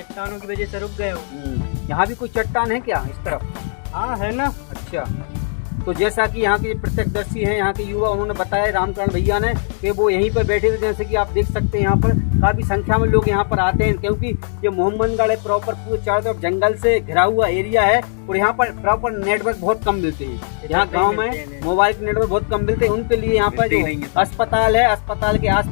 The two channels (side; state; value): right; silent; 63 dB below the other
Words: की वजह से रुक गए हो। यहाँ भी कोई चट्टान है क्या इस तरफ? हाँ है ना। अच्छा। तो जैसा कि यहाँ के प्रत्यक्षदर्शी हैं, यहाँ के युवा, उन्होंने बताया रामकरण भैया ने कि वो यहीं पर बैठे थे। जैसे कि आप देख सकते हैं यहाँ पर काफ़ी संख्या में लोग यहाँ पर आते हैं, क्योंकि ये मोहम्मदगढ़ है प्रॉपर पूरे चारों तरफ जंगल से घिरा हुआ एरिया है और यहाँ पर प्रॉपर नेटवर्क बहुत कम मिलते हैं। यहाँ गांव में मोबाइल के नेटवर्क बहुत कम मिलते हैं, उनके लिए यहाँ पर जो अस्पताल है, अस्पताल के